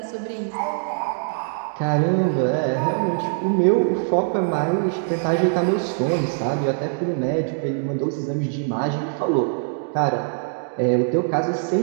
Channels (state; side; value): silent; left; digital silence